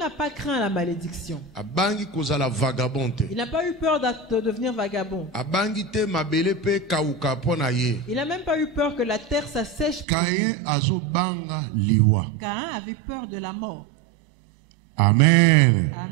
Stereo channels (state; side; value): drops out; left; at 10.1 s